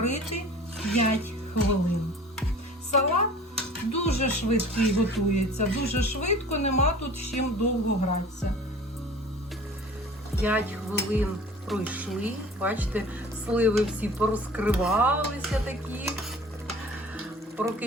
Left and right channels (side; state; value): both; normal; correlation 0.44